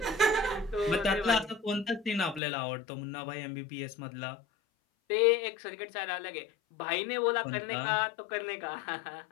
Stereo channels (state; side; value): drops out; right; at 2.4 s